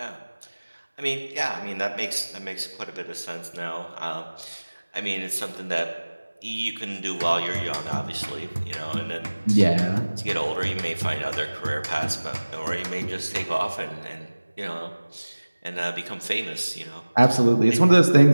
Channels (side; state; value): both; inverted; correlation -1.00